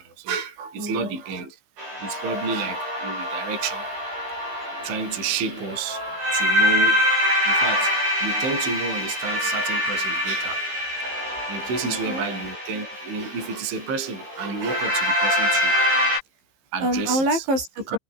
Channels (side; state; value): left; late; 15 ms